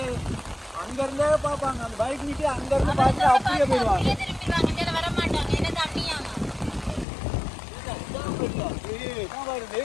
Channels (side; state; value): right; drops out; at 7.1 s